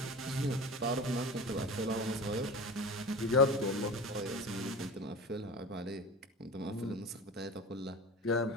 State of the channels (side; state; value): both; normal; correlation 0.32